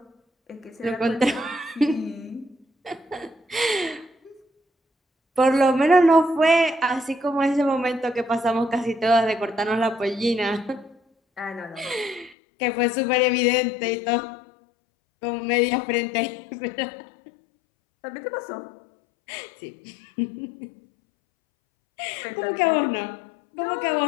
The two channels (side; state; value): right; drops out; at 12.4 s